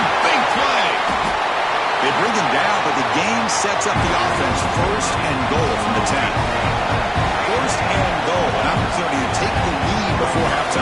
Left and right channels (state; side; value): identical; both; correlation 1.00